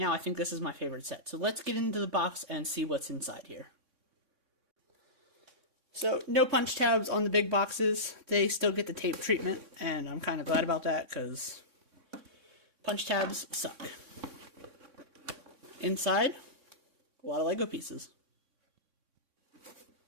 I think this is my favorite set. So let's get into the box and see what's inside here. So no punch tabs on the big boxes. They still get the tape treatment, and I'm kind of glad about that because punch tabs suck. Inside, a lot of Lego pieces.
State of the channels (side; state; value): left; late; 3.6 ms